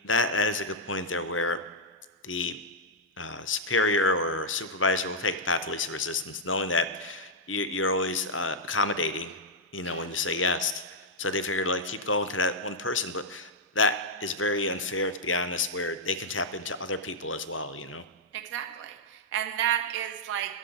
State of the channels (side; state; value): both; normal; correlation -0.06